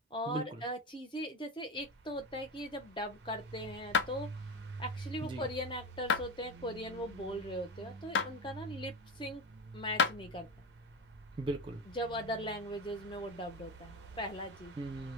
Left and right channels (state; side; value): normal; both; correlation 0.20